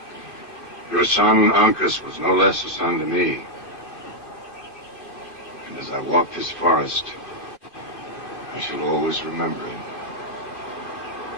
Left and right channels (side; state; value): right; late; 2.5 ms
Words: Your son, Uncas, was no less a son to me. And as I walk this forest, I shall always remember him.